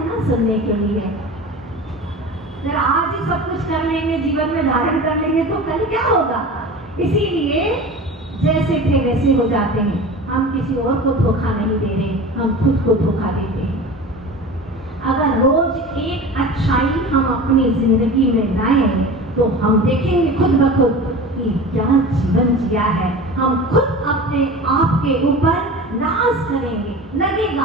ना सुनने के लिए। फिर आज ही सब कुछ कर लेंगे, जीवन में धारण कर लेंगे तो कल क्या होगा? इसीलिए जैसे थे वैसे हो जाते हैं। हम किसी और को धोखा नहीं दे रहे, हम खुद को धोखा देते हैं। अगर रोज एक अच्छाई हम अपनी जिंदगी में लाएं तो हम देखेंगे खुद ब खुद कि क्या जीवन जिया है। हम खुद अपने आप के ऊपर नाज करेंगे,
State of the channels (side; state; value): both; normal; correlation 0.34